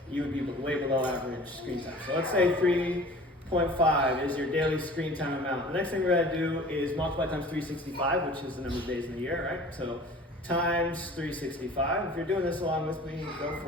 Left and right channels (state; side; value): normal; both; correlation 0.44